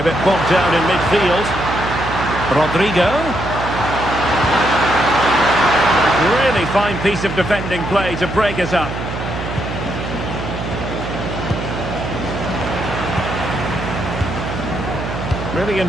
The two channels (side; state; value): right; noise; hum, 6 dB below the sound